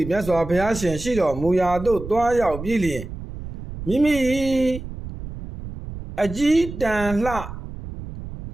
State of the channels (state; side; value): noise; right; rumble, 11 dB below the sound